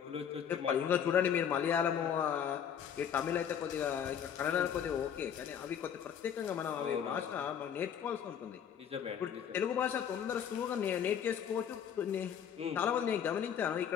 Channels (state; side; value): quieter; right; 8.5 dB